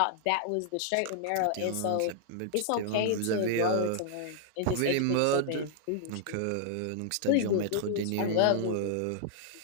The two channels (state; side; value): different; both; correlation -0.01